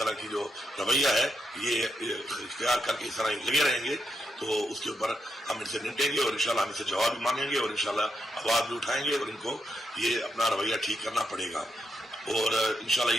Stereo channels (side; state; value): both; normal; correlation 0.82